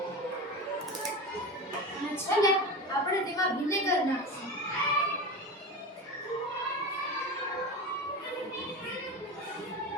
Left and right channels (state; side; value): normal; both; correlation 0.26